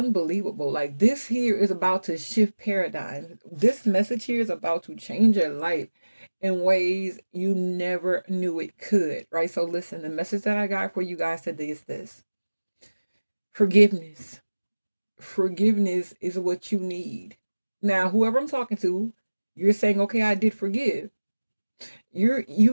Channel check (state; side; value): inverted; both; correlation -1.00